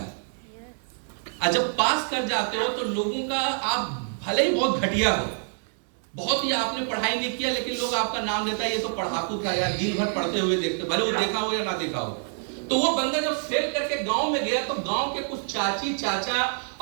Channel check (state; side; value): silent; left; 61 dB below the other